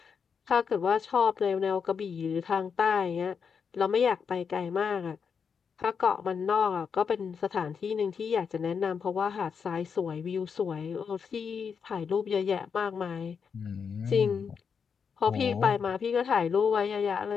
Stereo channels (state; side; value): quieter; right; 6.3 dB